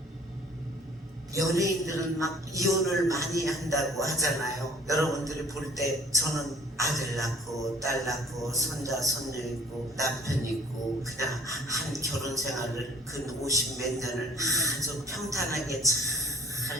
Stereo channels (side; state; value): both; normal; correlation 0.55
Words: 연예인들은 막 이혼을 많이 한다고 하잖아요. 여러분들이 볼 때 저는 아들 낳고 딸 낳고 손자 손녀 있고 남편 있고 그냥 한 결혼 생활을 근 50 몇 년을 아주 평탄하게